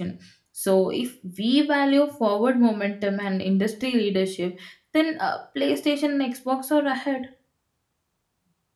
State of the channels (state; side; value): identical; both; correlation 1.00